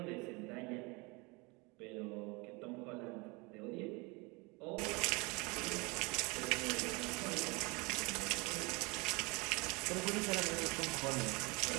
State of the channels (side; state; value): left; quieter; 27.3 dB